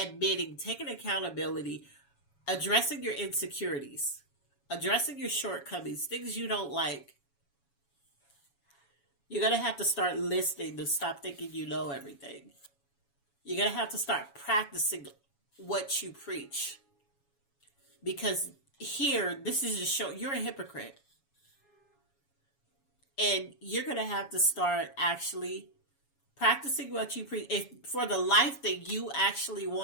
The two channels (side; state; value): right; late; 7.2 ms